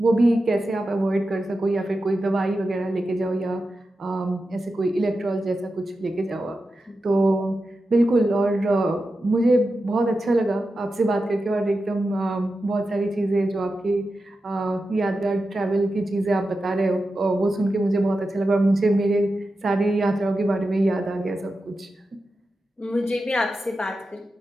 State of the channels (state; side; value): normal; both; correlation 0.91